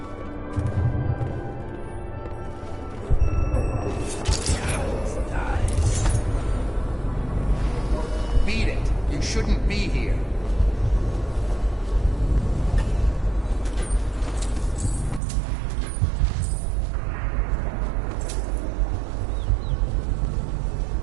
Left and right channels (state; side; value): drops out; left; at 15.2 s